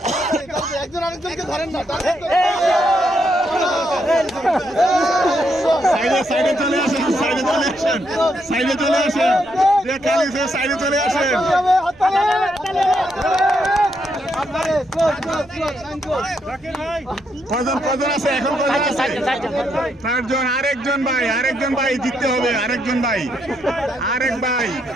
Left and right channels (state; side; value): noise; right; rumble, 28 dB below the sound